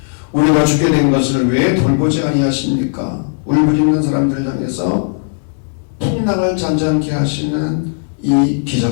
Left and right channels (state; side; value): silent; right; digital silence